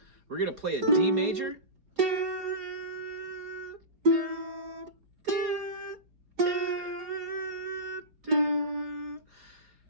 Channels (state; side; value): late; left; 4.3 ms